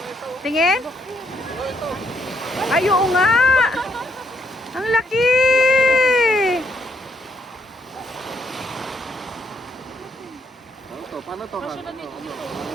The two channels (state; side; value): normal; both; correlation 0.73